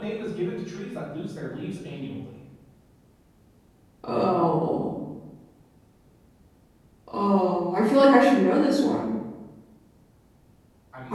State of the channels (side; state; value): both; identical; correlation 1.00